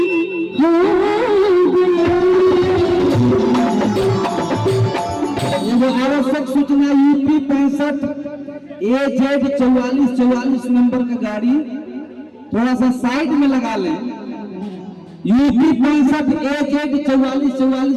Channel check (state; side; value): identical; both; correlation 1.00